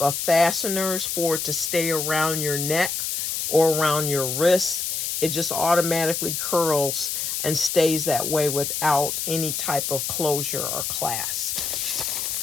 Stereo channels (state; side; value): noise; left; hiss, 2 dB below the sound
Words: fasteners for it to stay around your neck or around your wrist. It just automatically curls and stays that way without any type of closure or clasp.